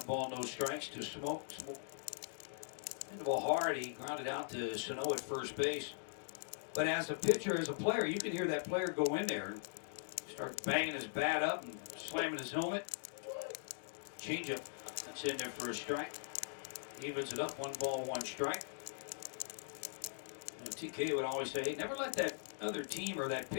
ball, no strikes to Smoke. Hit the ball hard. He grounded out to Sano at first base. But as a pitcher, as a player, you can hear that player go in there and start banging his bat up and slamming his helmet. Changeup. That's in there for a strike. Evens it up. 1 ball, 1 strike. And TK would always say, hey, never let that other team or that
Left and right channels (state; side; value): silent; right; digital silence